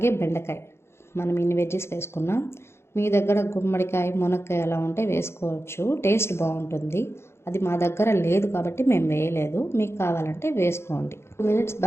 బెండకాయ, మనం ఇన్ని వెజ్జీస్ వేసుకున్నాం. మీ దగ్గర గుమ్మడికాయ, మునక్కాయ అలా ఉంటే వేసుకోవచ్చు, టేస్ట్ బాగుంటుంది. అది మా దగ్గర లేదు కాబట్టి మేము వేయలేదు, మీకు కావాలంటే వేసుకోండి. 2 మినిట్స్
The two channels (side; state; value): right; late; 0.12 ms